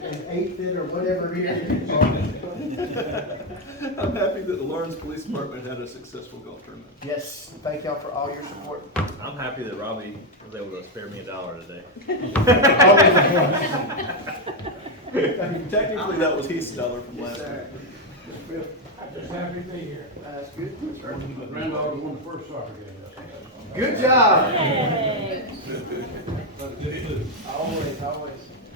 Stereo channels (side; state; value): both; normal; correlation 0.04